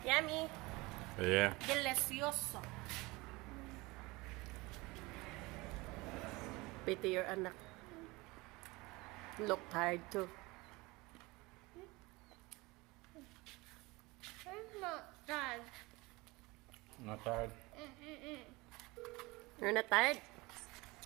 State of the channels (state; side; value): quieter; left; 23.0 dB